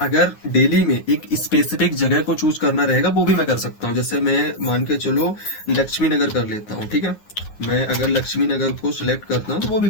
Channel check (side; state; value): right; late; 9.6 ms